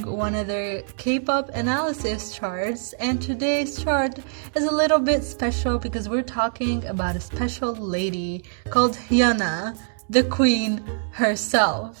one of their K-pop analysis charts, and today's chart is a little bit special because we're talking about a special lady called Hyuna, the queen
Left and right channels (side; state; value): left; silent; digital silence